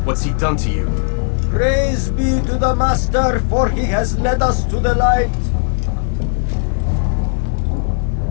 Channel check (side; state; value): right; silent; digital silence